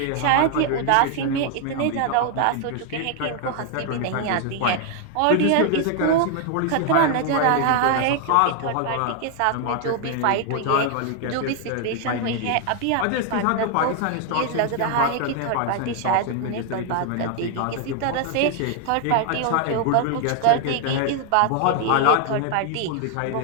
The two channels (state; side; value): different; both; correlation 0.00